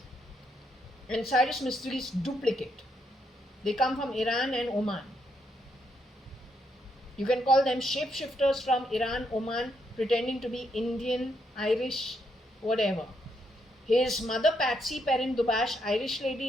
and Cyrus Mistry's duplicate. They come from Iran and Oman. You can call them shapeshifters from Iran, Oman, pretending to be Indian, Irish, whatever. His mother, Patsy Perrin Dubash, Irish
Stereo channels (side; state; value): both; normal; correlation 0.77